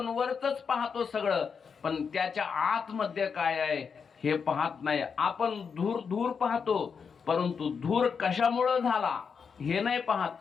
वरच पाहतो सगळं, पण त्याच्या आतमध्ये काय आहे हे पाहत नाही. आपण धूर धूर पाहतो, परंतु धूर कशामुळे झाला हे नाही पाहत.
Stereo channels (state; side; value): quieter; right; 6.1 dB